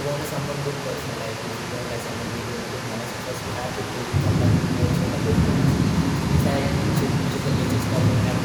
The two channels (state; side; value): identical; both; correlation 1.00